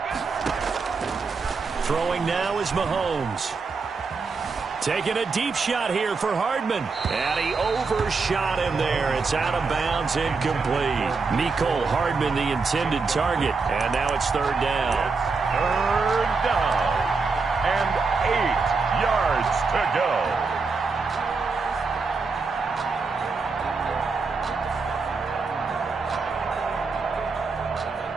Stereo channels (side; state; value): left; quieter; 4.5 dB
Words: Throwing now is Mahomes. Taking a deep shot here for Hardman. And he overshot him there. It's out of bounds, incomplete. Mecole Hardman, the intended target. And now it's 3rd down. It's 3rd down. And 8 yards to go.